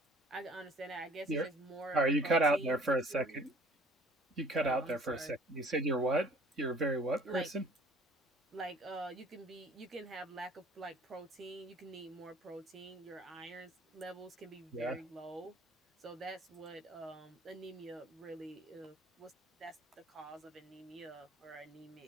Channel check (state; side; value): normal; both; correlation 0.53